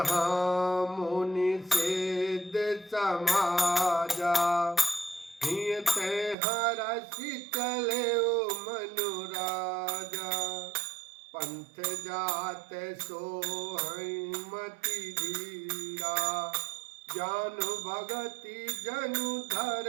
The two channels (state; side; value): drops out; left; at 6.4 s